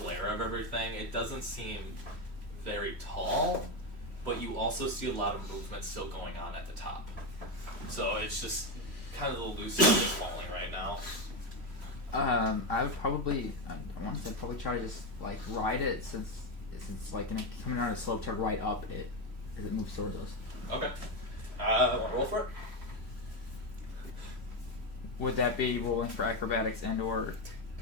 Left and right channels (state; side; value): late; left; 3.1 ms